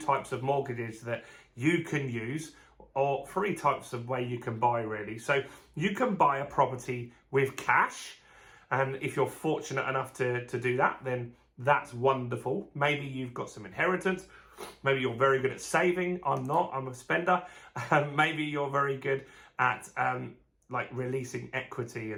of mortgages that you can use, or three types of way you can buy really. So you can buy a property with cash, and if you're fortunate enough to do that, then that's wonderful. Maybe you've got some inheritance. Maybe you're very good at saving. I'm not, I'm a spender. Maybe you're very good at like releasing equity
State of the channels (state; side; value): identical; both; correlation 1.00